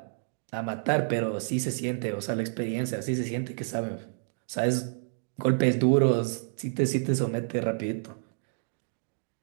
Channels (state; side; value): silent; left; digital silence